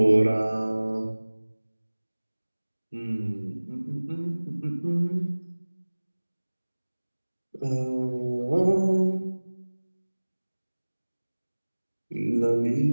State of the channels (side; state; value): both; inverted; correlation -1.00